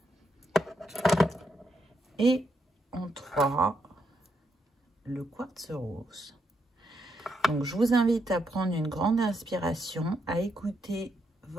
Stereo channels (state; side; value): normal; both; correlation 0.79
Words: Et en 3, le quartz rose. Donc, je vous invite à prendre une grande inspiration, à écouter